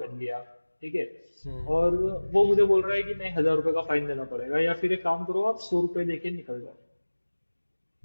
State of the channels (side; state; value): both; inverted; correlation -1.00